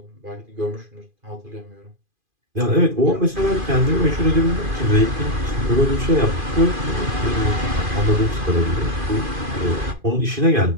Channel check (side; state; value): left; late; 2.5 ms